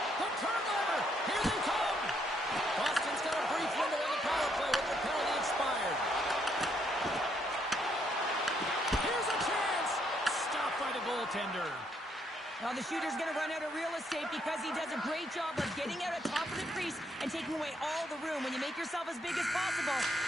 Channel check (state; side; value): normal; both; correlation 0.73